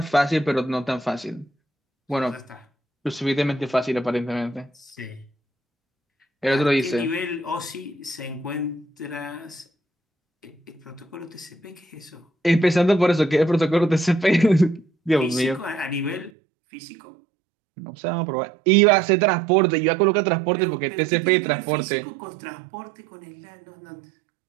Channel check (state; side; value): drops out; left; at 16.3 s